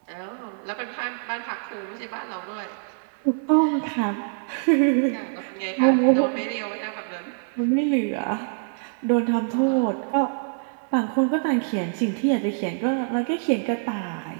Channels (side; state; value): left; silent; digital silence